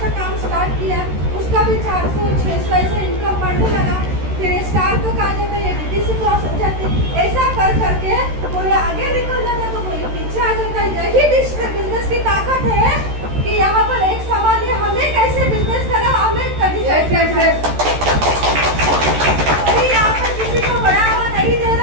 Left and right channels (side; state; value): left; late; 13 ms